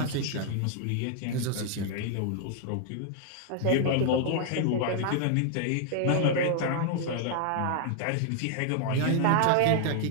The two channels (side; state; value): both; different; correlation 0.00